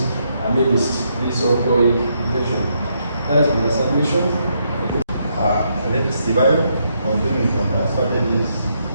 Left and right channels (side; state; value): both; inverted; correlation -0.77